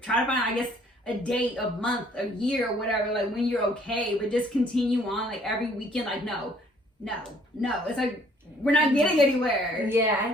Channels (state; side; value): normal; both; correlation 0.61